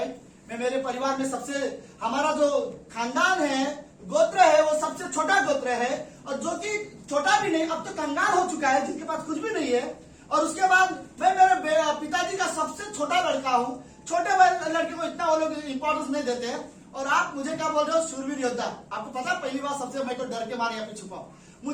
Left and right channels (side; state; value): both; identical; correlation 1.00